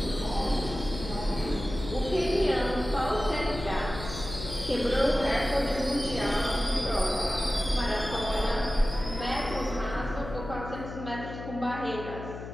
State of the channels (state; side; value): noise; left; hum, 10 dB below the sound